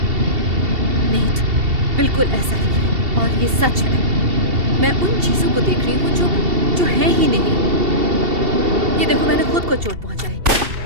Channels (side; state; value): left; late; 2.7 ms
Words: नेट, बिल्कुल ऐसा ही है और ये सच है। मैं उन चीजों को देख रही हूँ जो है ही नहीं। ये देखो, मैंने खुद को चोट पहुंचाई